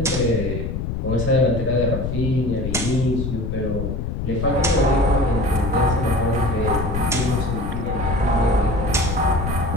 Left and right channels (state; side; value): noise; left; rumble, 3 dB below the sound